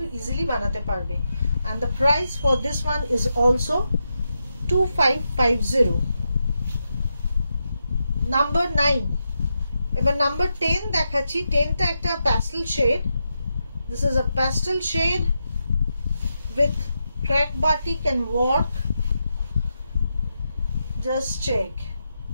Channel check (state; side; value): inverted; both; correlation -0.86